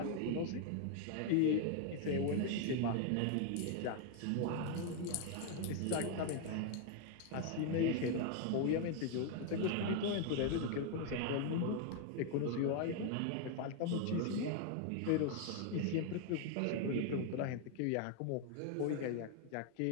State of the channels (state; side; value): different; both; correlation 0.00